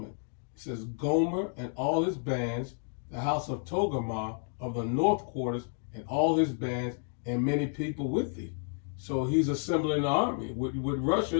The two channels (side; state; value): right; silent; 57 dB below the other